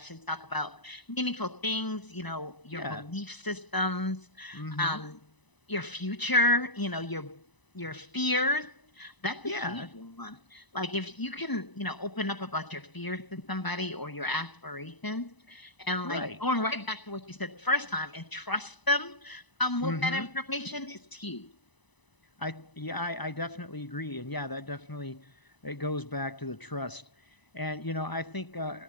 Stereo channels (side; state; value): right; late; 1.0 ms